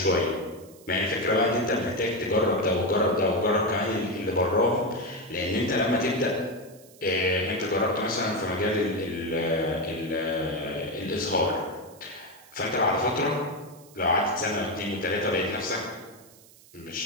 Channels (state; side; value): noise; right; hiss, 24 dB below the sound